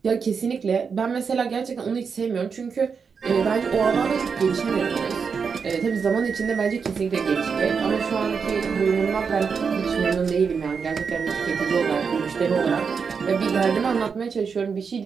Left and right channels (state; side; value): quieter; left; 5.8 dB